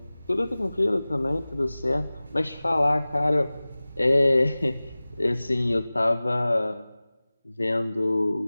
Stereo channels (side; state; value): both; inverted; correlation -0.99